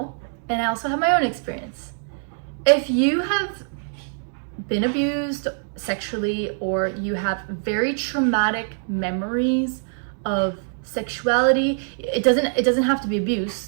and I also have my own experience. If you have been abused sexually, or you have very traumatic memories of sexuality, it doesn't have to be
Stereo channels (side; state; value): left; silent; digital silence